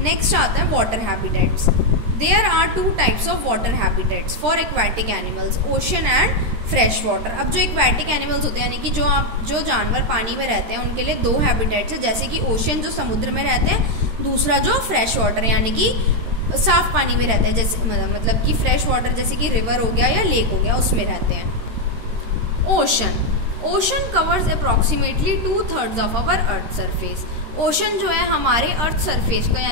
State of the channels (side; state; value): left; late; 13 ms